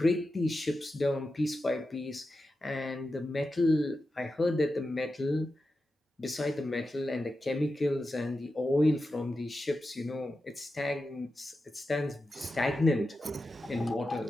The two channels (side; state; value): both; normal; correlation 0.91